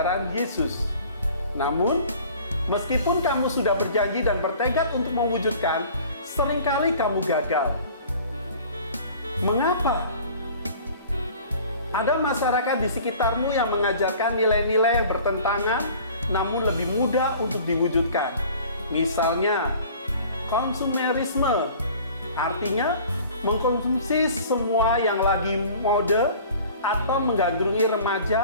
Yesus. Namun, Meskipun kamu sudah berjanji dan bertekad untuk mewujudkan, seringkali kamu gagal. Mengapa? Ada masyarakat di sekitarmu yang mengajarkan nilai-nilai yang bertentangan, namun lebih mudah untuk diwujudkan. Misalnya, konsumerisme, artinya mengkonsumsi semua yang lagi mode atau menggandrungi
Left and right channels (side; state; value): both; inverted; correlation -0.47